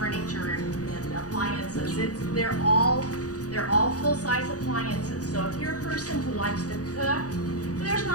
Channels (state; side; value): late; right; 0.67 ms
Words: and appliances. They're all full-size appliances. So if you're a person who likes to cook, there's